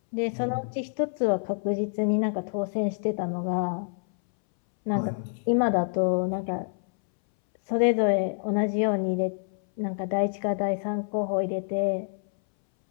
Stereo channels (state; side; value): silent; right; 60 dB below the other